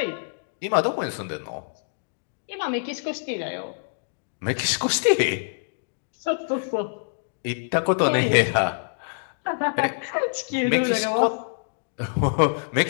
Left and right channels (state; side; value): silent; right; digital silence